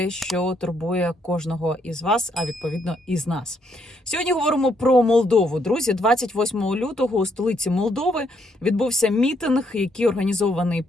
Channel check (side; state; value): both; normal; correlation 0.73